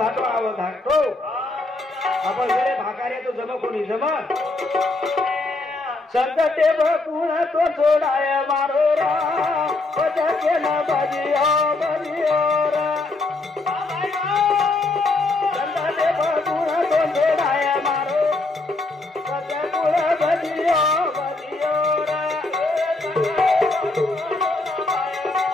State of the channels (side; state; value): right; quieter; 3.1 dB